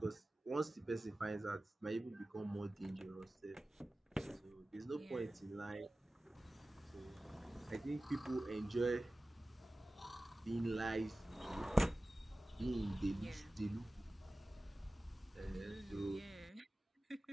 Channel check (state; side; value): normal; both; correlation 0.96